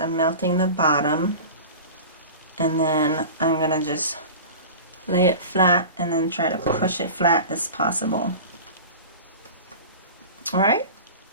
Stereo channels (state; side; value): inverted; both; correlation -0.35